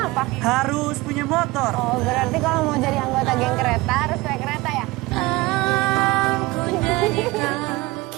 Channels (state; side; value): quieter; left; 21.1 dB